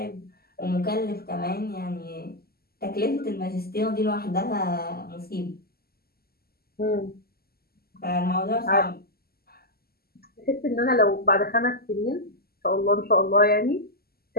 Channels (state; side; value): late; right; 0.45 ms